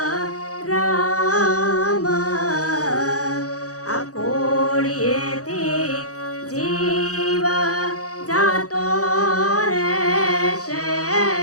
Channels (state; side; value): late; right; 0.66 ms